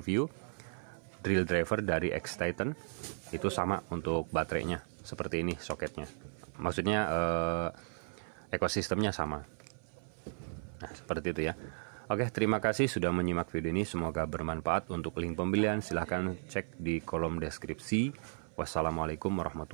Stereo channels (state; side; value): silent; left; 54 dB below the other